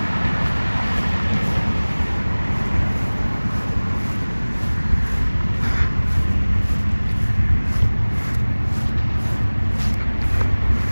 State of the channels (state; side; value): inverted; both; correlation -1.00